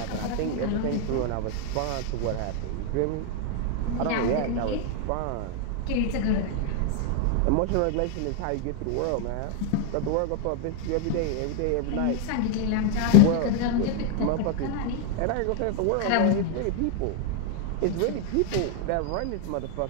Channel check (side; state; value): both; different; correlation 0.00